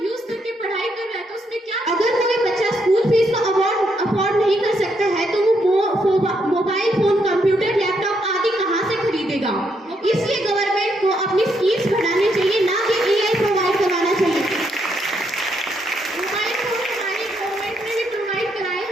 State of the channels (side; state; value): both; normal; correlation 0.76